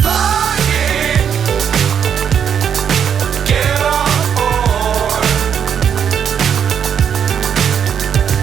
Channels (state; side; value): quieter; left; 8.0 dB